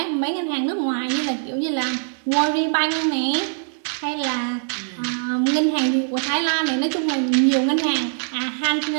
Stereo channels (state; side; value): silent; left; digital silence